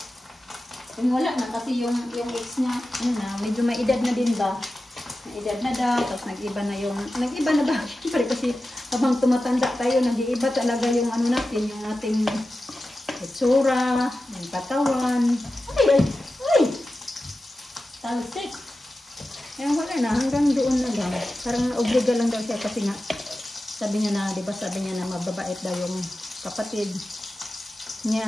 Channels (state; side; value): normal; both; correlation 0.93